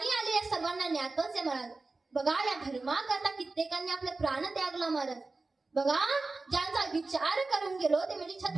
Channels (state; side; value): quieter; left; 3.6 dB